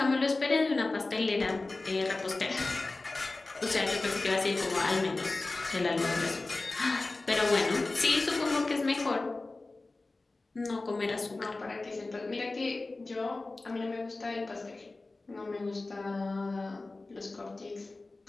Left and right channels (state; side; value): quieter; right; 3.3 dB